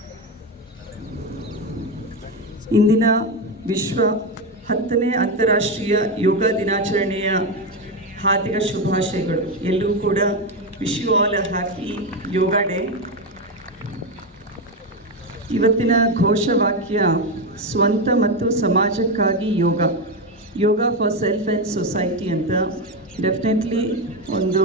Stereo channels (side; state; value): both; normal; correlation 0.12